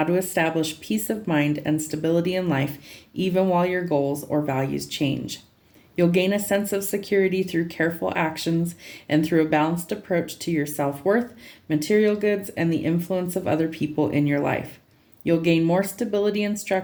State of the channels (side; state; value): both; identical; correlation 1.00